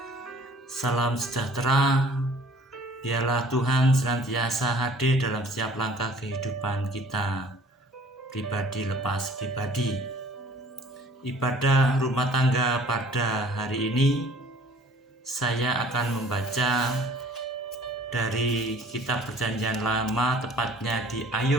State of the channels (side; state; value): both; normal; correlation 0.52